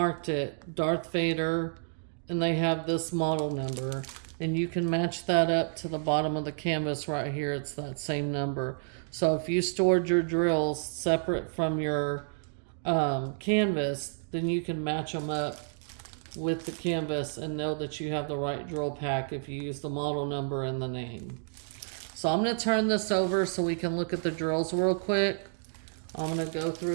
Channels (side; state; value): left; silent; digital silence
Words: it Darth Vader, and they have this model number, and you can match that up to the bottom of the canvas right here. It's that same number. So if you stored your drills separate from your canvas, then you can match them up with the canvas and know that you have the right drill pack if you use the model number and the name. So I'm going to turn this over so we can look at the drills real quick. I'm going to go